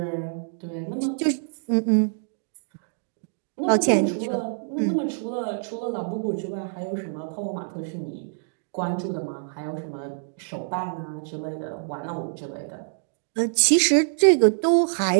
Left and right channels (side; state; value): left; silent; digital silence